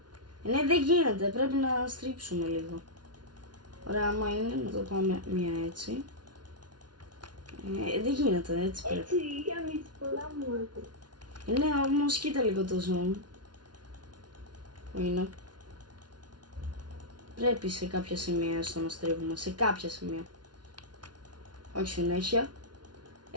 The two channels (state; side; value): late; left; 0.70 ms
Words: Ναι, δεν γίνεται, πρέπει να στρίψουμε λίγο. Ωραία, άμα είναι να το πάμε μία έτσι. Δεν γίνεται, έτσι πρέπει. Έτσι, κάνεις πολλά μου. Ναι, όμως κοίτα λίγο το zoom. Που είναι. Πρέπει σε κάποια σημεία στο να στρίβουμε, σε κάποια σημεία. Όχι συνέχεια.